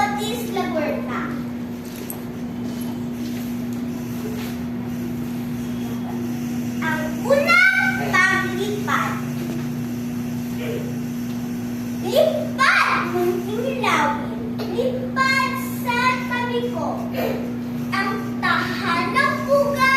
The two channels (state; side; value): identical; both; correlation 1.00